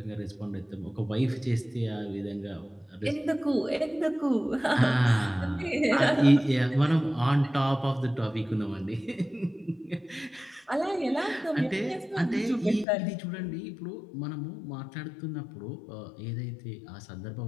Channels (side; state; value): right; drops out; at 12.9 s